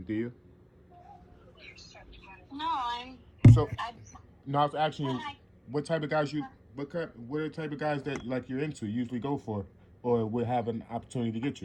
do you? no, So I, no, I was asking when you what type of guys you what are the type of guys that like you're into usually go for, or would have an opportunity to get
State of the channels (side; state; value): both; identical; correlation 1.00